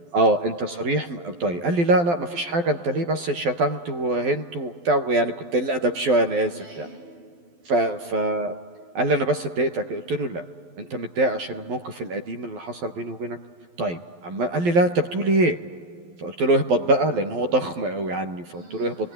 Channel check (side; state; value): left; late; 12 ms